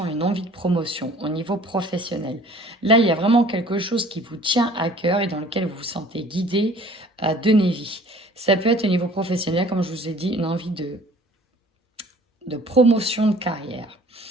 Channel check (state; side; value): normal; both; correlation 0.52